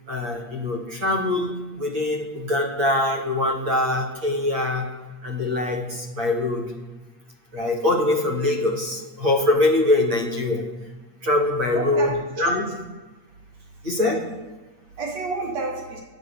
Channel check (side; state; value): left; late; 8.5 ms